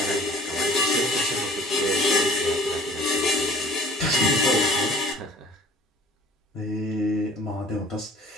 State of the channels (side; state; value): both; normal; correlation 0.50